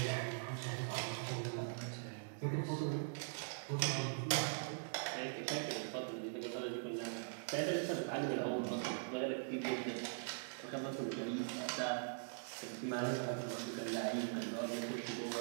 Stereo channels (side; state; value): left; silent; digital silence